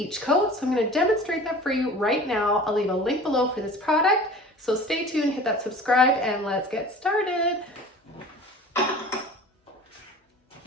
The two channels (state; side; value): normal; both; correlation 0.41